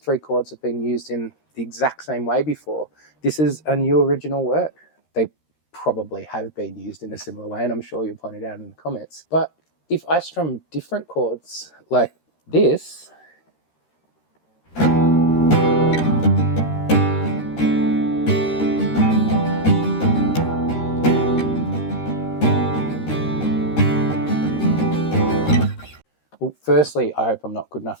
chords have been used in the exact same way before, this is a new original work. They probably have been used in a similar way, and I'm sure you'll point it out in the comments. But if I strum different chords like this, well, firstly, I hope I'm not good enough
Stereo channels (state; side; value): late; right; 13 ms